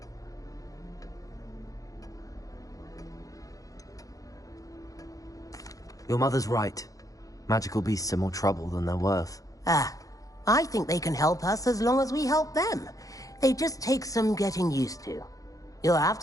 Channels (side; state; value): right; late; 0.17 ms